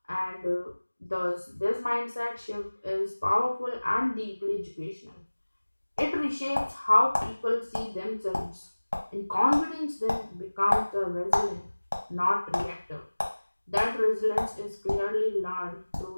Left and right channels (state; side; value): inverted; both; correlation -1.00